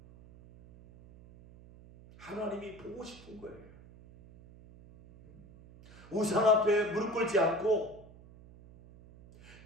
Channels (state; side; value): noise; right; hum, 21 dB below the sound